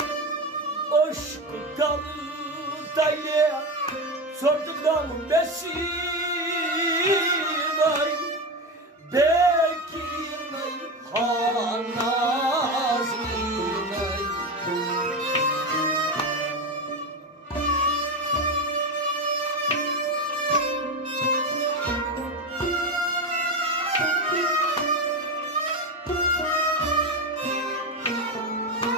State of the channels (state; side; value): normal; both; correlation 0.17